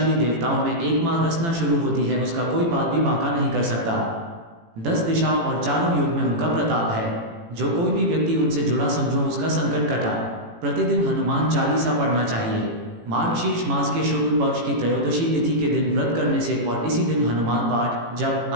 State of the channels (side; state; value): left; late; 18 ms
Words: देवताओं में एक माँ रचना शुरू होती है, उसका कोई बात भी बांका नहीं कर सकता। 10 दिशाओं और चारों युग में उनका प्रताप है। जो कोई भी व्यक्ति उनसे जुड़ा समझो उसका संकट कटा। प्रतिदिन हनुमान चालीसा पढ़ना चाहिए। मार्गशीर्ष मास के शुक्ल पक्ष की त्रयोदशी तिथि के दिन व्रत करने से और इसी दिन हनुमान पाठ जब